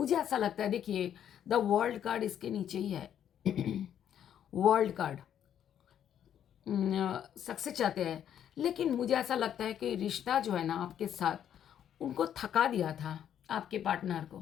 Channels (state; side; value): quieter; right; 9.7 dB